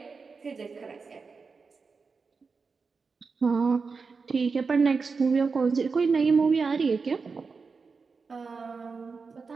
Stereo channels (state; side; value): quieter; left; 4.8 dB